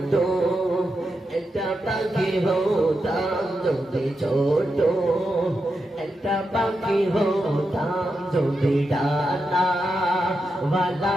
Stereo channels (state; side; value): normal; both; correlation 0.87